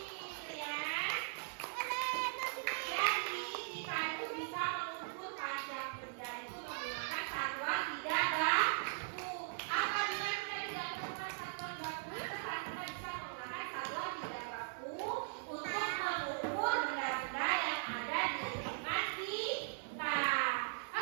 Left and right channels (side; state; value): left; silent; 51 dB below the other